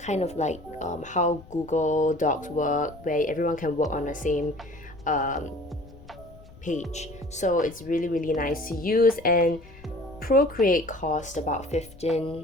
of like how Google Docs work, where everyone can work on the same page. So it's really, really nice to use. And Procreate cost about 15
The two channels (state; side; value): noise; left; rumble, 20 dB below the sound